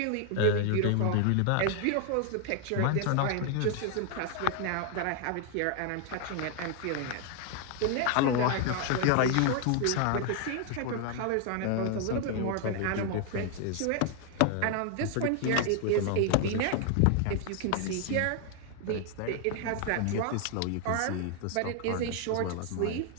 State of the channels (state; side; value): different; both; correlation 0.00